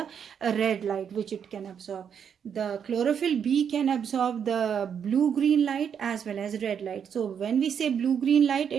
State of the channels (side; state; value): left; quieter; 7.8 dB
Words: red light which it can absorb. The chlorophyll B can absorb the blue-green light as well as red light. So when we say blue-green light,